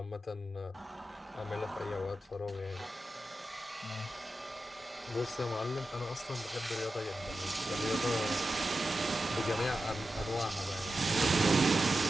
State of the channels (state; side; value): normal; both; correlation 0.92